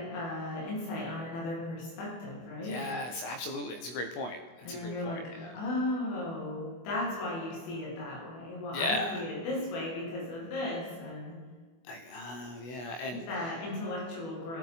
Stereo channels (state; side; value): late; right; 24 ms